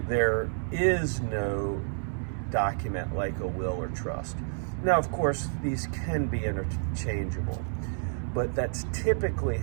there is no document like a will or trust. Now, of course, these can be interchangeable, but that's typically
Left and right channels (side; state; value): left; silent; digital silence